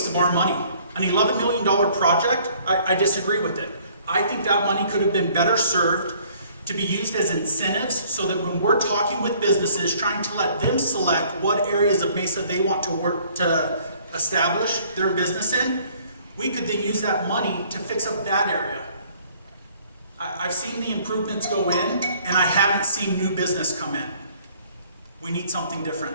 of our money. An $11 million project? I disagree with it. I think that money could have been better served to be used as incentives so that when we're talking with businesses, trying to let them select what areas of Mesa they want to work to establish their business in, we could then use that money to fix up that area. I've seen the improvements go in, and I haven't seen new business come in. We need something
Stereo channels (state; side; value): inverted; both; correlation -0.58